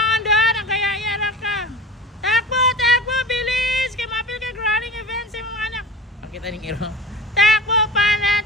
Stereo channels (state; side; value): normal; both; correlation 0.35